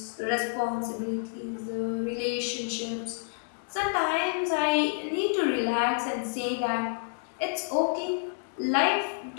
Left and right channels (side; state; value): right; silent; digital silence